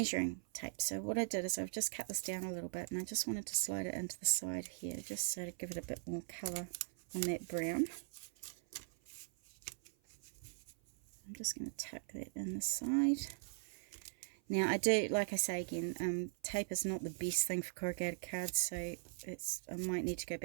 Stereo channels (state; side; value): silent; left; 51 dB below the other